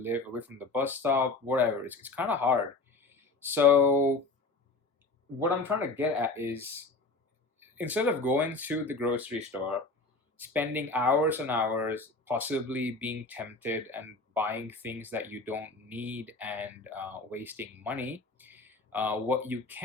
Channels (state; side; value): quieter; right; 3.5 dB